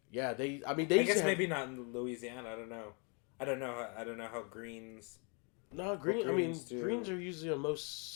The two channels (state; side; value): quieter; right; 35.3 dB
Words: Yeah, they I guess maybe not in Louisiana. I don't know. I don't know how greens. No, greens are usually on most